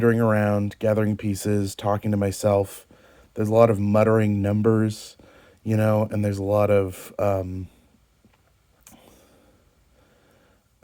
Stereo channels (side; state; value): both; identical; correlation 1.00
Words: around, gathering pieces, talking to myself. There's a lot of muttering numbers, and there's a lot of